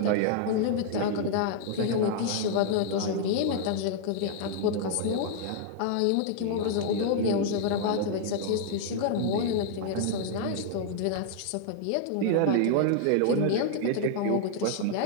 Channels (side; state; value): both; different; correlation 0.00